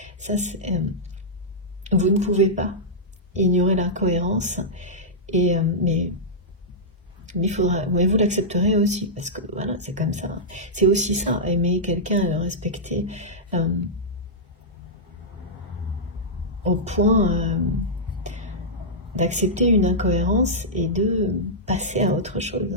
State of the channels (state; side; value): normal; both; correlation -0.11